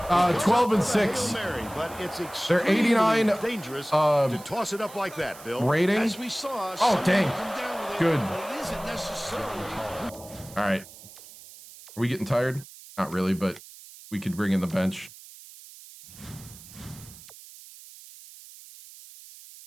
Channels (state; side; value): noise; right; hiss, 18 dB below the sound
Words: 12 and Goes up with a 6. Hail Mary, but it's They're extremely 89, dangerous to toss it up like that, Bill. Rating. As we saw, Oh, dang. come down with it, Good. but it isn't necessarily. All right. Are we getting tired? Not really, but we could bring in the bench.